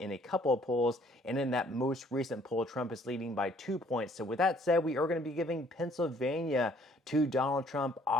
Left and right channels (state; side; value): normal; both; correlation 0.61